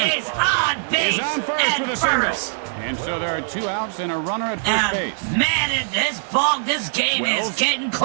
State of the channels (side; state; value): left; silent; 64 dB below the other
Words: on base. is on first at with a single. first. And so there are 2 outs and a runner at first base. Man, this game Wells is getting